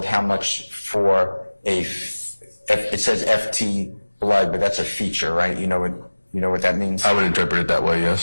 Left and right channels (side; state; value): both; inverted; correlation -1.00